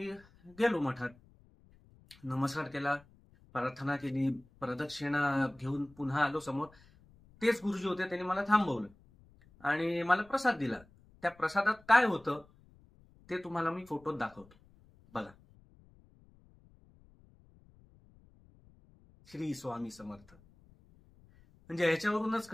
गेलो मठात. नमस्कार केला, प्रार्थना केली, प्रदक्षिणा घेऊन पुन्हा आलो समोर. तेच गुरुजी होते, त्यांनी मला थांबवलं आणि मला प्रसाद दिला. त्या प्रसादात काय होतं ते तुम्हाला मी फोटोत दाखवतो, बघा. श्री स्वामी समर्थ. म्हणजे याच्यावरूनच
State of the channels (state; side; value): noise; left; rumble, 27 dB below the sound